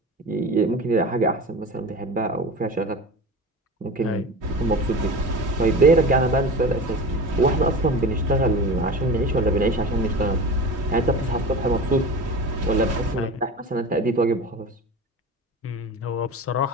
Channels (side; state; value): both; normal; correlation 0.32